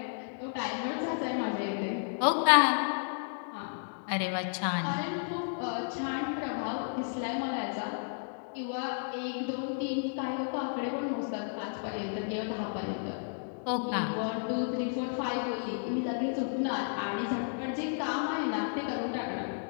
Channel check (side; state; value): right; silent; digital silence